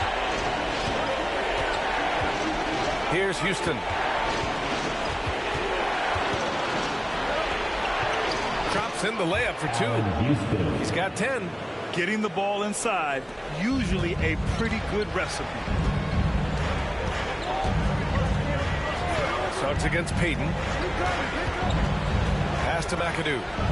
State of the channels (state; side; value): identical; both; correlation 1.00